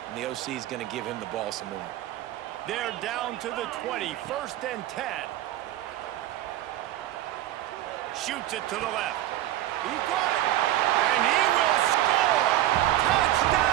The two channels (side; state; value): left; quieter; 13.9 dB